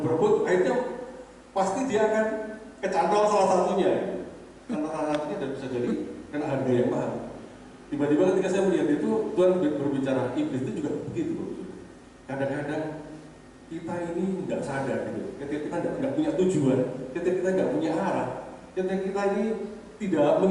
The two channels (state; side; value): identical; both; correlation 1.00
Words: berebut akhirnya pasti dia akan kecantol salah satunya. Karena salah satunya dan bisa jadi kena harga yang mahal. Tiba-tiba ketika saya melihat itu, Tuhan berbicara, iblis itu juga begitu. Kadang-kadang kita ini nggak sadar gitu. Ketika kita nggak punya tujuan, ketika kita nggak punya arah, ketika kita ini tidak